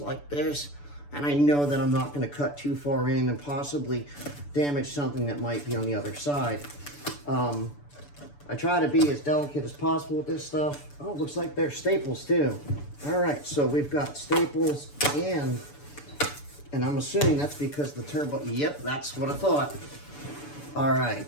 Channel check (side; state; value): right; late; 6.9 ms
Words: this, and I know that I'm not going to cut too far in and possibly damage something that might be on the other side. I try to be as delicate as possible with this stuff. Oh, it looks like there's staples too. All right, so we've got staples and I'm assuming that's because the turbo, yep, that's what I thought. All